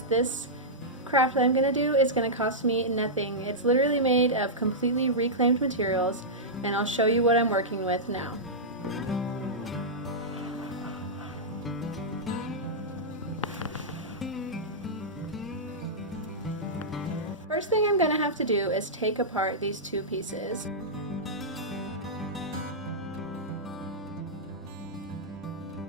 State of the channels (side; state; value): both; normal; correlation -0.11